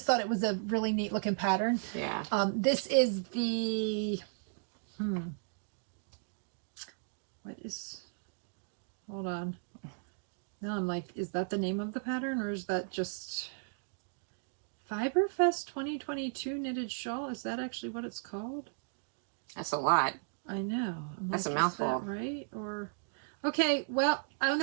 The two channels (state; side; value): silent; left; digital silence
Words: thought it was a really neat looking pattern. Yeah. This is the, hold on. Now I'm like, is that the name of the pattern, or is that just Fiberfest 2022 knitted shawl? Is that actually what it's called? That's a lot. I know. That's a mouthful. Is that right? Or Okay, well, oh